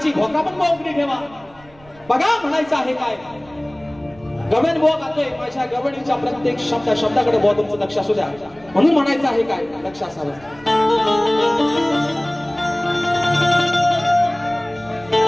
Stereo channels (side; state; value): right; noise; rumble, 26 dB below the sound